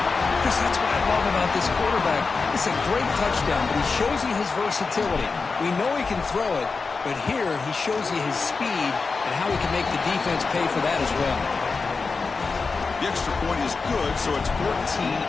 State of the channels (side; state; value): right; quieter; 4.4 dB